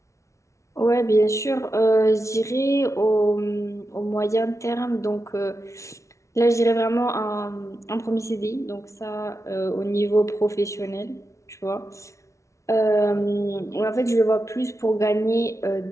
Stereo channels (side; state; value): right; late; 0.14 ms